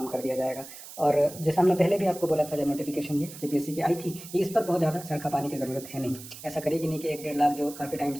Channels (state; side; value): noise; right; hiss, 14 dB below the sound